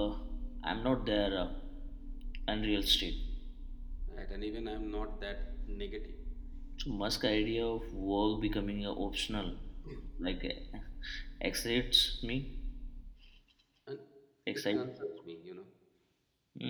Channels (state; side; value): identical; both; correlation 1.00